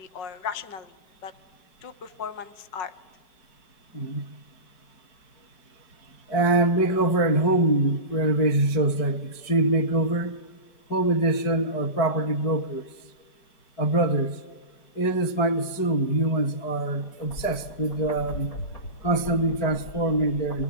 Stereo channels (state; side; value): late; right; 4.6 ms